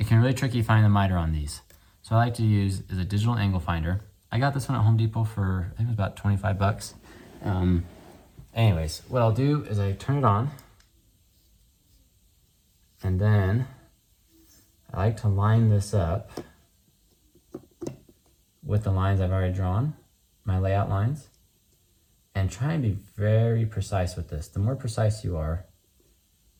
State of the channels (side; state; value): both; identical; correlation 1.00